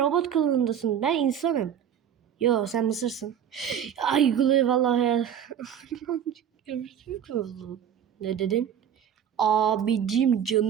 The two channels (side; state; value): left; quieter; 9.0 dB